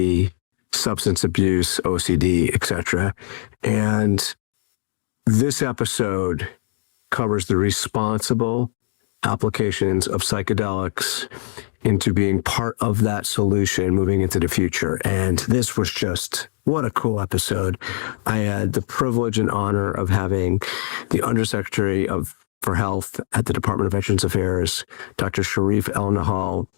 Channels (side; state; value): right; silent; digital silence